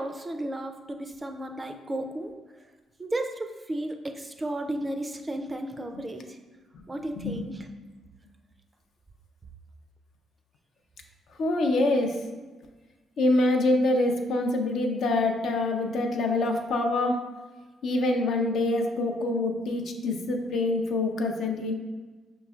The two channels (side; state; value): both; normal; correlation 0.69